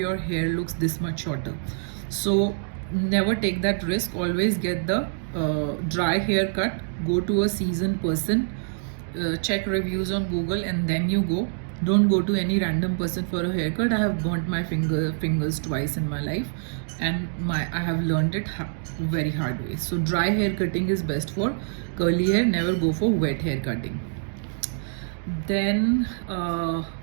hair looks this much shorter. So never take that risk. Always get the dry haircut. Go to a seasoned person, check reviews on Google, and then you go. Don't go to any random person for a haircut. I have burnt my fingers twice in my life, and I have learned it very hard way. So dry hair cutting is best for curly hair. Never go for wet hair cutting. Then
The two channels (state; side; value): silent; left; digital silence